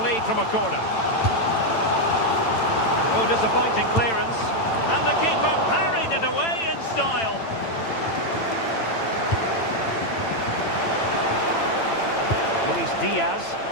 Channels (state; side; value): late; right; 8.9 ms